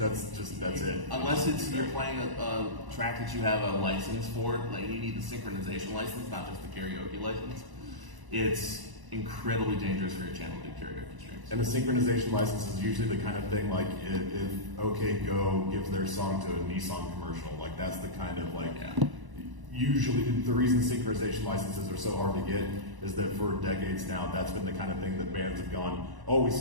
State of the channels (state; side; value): late; left; 1.0 ms